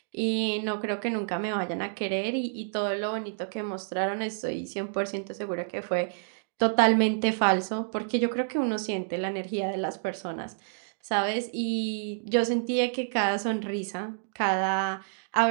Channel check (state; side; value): silent; left; digital silence